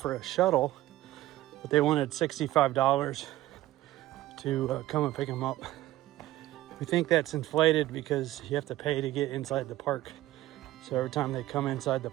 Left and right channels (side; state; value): left; quieter; 15.5 dB